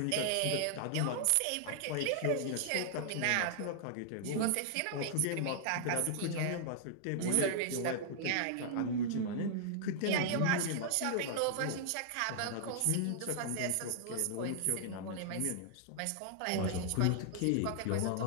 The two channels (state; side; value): different; both; correlation -0.01